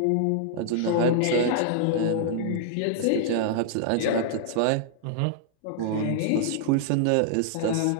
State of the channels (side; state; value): both; different; correlation -0.01